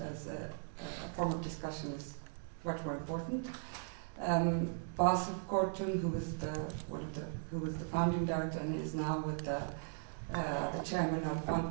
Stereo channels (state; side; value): silent; left; digital silence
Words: as a form of discussion is much more important. Bas Kortun, who was the founding director and is now with the chairman of